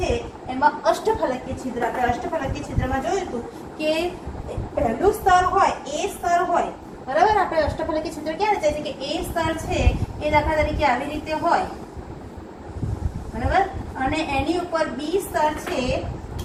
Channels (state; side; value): identical; both; correlation 1.00